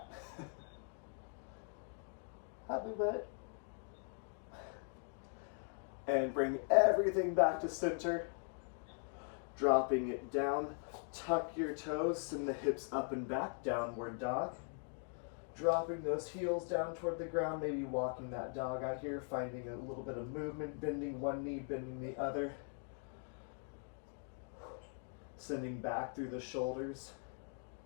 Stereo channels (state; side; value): silent; right; 51 dB below the other